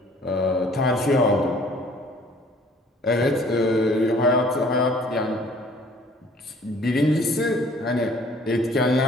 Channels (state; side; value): normal; both; correlation 0.55